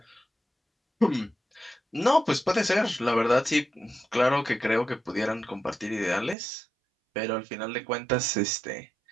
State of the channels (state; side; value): drops out; left; at 6.4 s